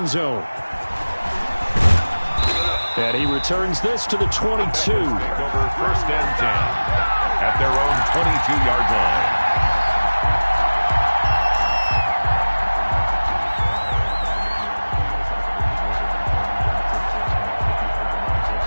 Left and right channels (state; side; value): inverted; both; correlation -1.00